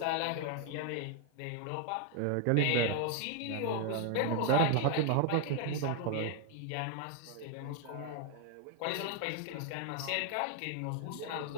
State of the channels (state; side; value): different; both; correlation 0.01